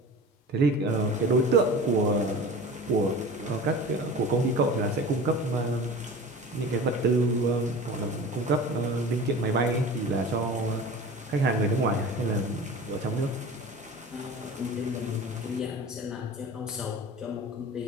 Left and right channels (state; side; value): normal; both; correlation 0.37